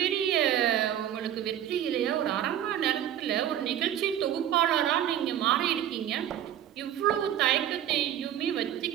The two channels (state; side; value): quieter; left; 10.8 dB